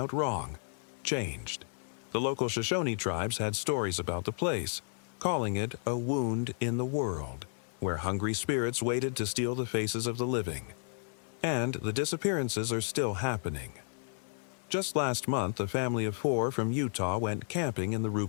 wrong, changed. The local Shoshone tribes had stories about the place, calling it a wound in the world, where hungry spirits waited to steal the faces of the living. And the disappearances are still happening. Just last month, a family of 4 from Utah went camping in the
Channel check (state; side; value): silent; right; 56 dB below the other